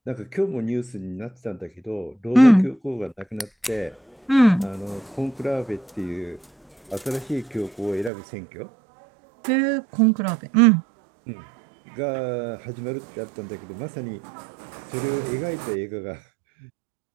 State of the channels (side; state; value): left; drops out; at 8.1 s